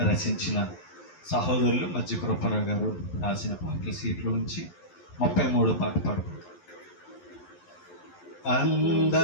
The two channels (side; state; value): right; late; 11 ms